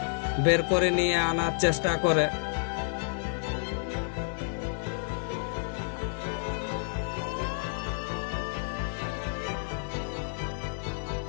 বের করে নিয়ে আনার চেষ্টা করে।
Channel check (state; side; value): silent; right; digital silence